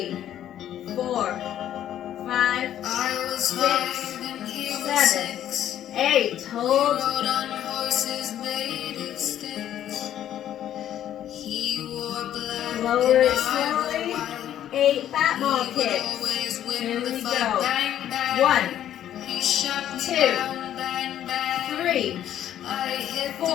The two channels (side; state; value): right; quieter; 11.2 dB